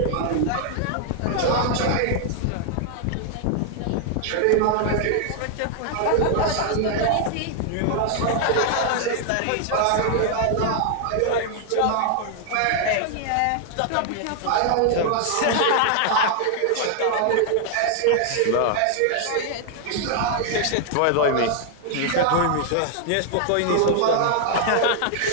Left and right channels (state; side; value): different; both; correlation 0.00